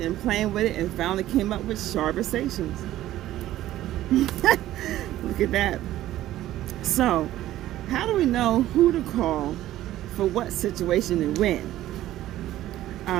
and finally came up with Charversations. look at that. So, how do we know who to call for what situation and when?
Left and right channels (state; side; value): quieter; left; 14.2 dB